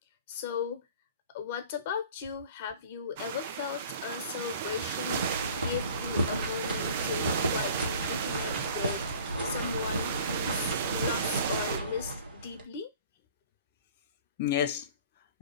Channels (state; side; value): inverted; both; correlation -0.47